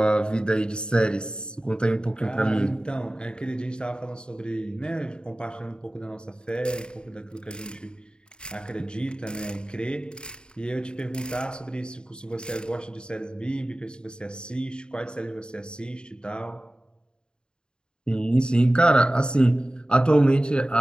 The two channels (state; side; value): late; right; 0.049 ms